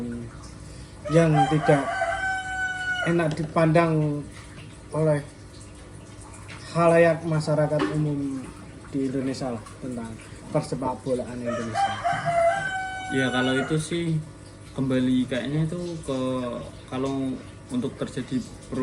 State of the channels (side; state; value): both; identical; correlation 1.00